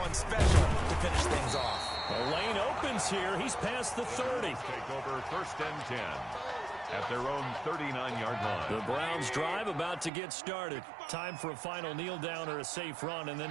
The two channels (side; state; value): left; drops out; at 10.1 s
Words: special to finish things off. The lane opens here. He's past the 30. Take over 1st and 10. At their own 39-yard line. The Browns drive about to get started. Time for a final kneel down or a safe run, and then